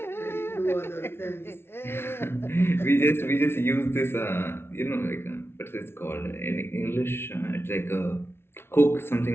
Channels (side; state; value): right; late; 0.12 ms